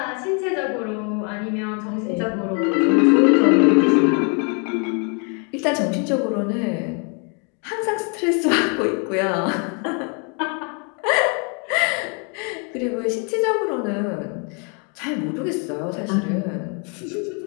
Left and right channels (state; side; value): quieter; right; 37.0 dB